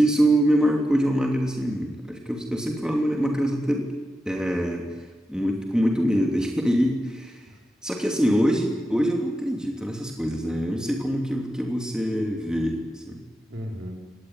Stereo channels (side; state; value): both; normal; correlation 0.89